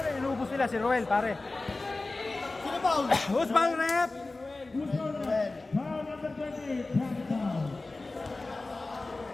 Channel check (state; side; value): quieter; right; 3.2 dB